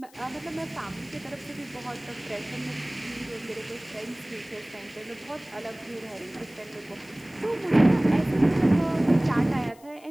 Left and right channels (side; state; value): left; noise; hiss, 26 dB below the sound